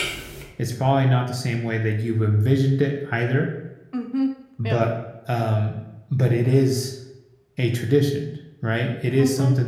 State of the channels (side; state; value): both; identical; correlation 1.00